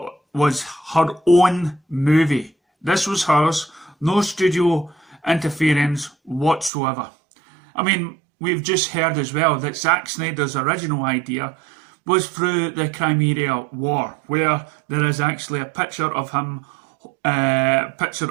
was her own movie. This was hers, no studio interference whatsoever. I mean, we've just heard as well that Zack Snyder's original idea was through the Crimea War, where there is actually a picture of him, picture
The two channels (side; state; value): left; drops out; at 6.7 s